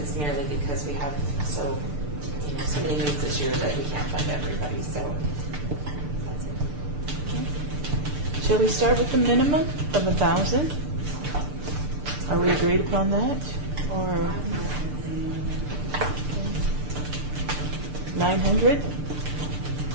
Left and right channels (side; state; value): left; late; 6.8 ms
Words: merely because we have so many needs this year that we can't fund everybody, so that's it. Shall we start with the minimum of 1,000? Are we agreed upon that? Or 900?